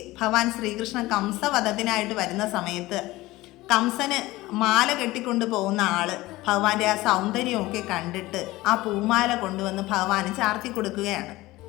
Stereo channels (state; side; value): quieter; right; 18.7 dB